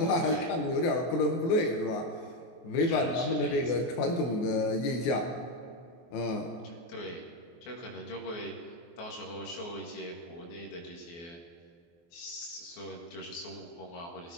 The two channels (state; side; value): late; right; 24 ms